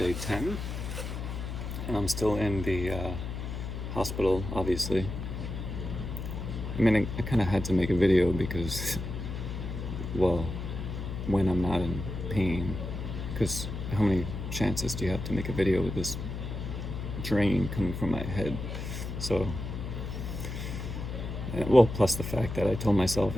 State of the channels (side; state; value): left; noise; hum, 6 dB below the sound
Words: 10. And I'm still in the hospital, obviously. I mean, I kind of had to make a video because, well, when I'm not in pain, because how many chances do you have to make a video with this drain coming from my head? So, well, plus the fact that I told myself,